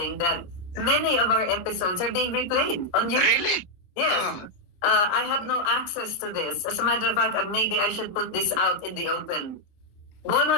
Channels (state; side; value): late; right; 28 ms